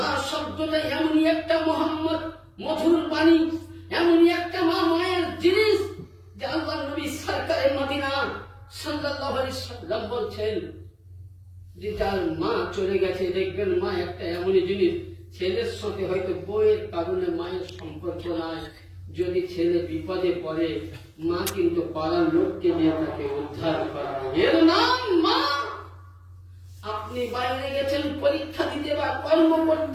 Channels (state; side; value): identical; both; correlation 1.00